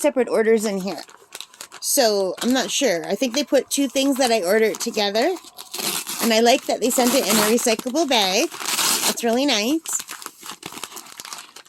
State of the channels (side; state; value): both; identical; correlation 1.00